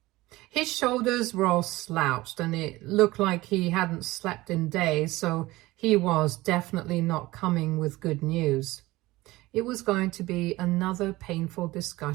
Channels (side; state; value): left; quieter; 19.2 dB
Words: His shoulders were all slouched and it looked like he hadn't slept in days, so he was definitely not coming with good news. It was going to be another painful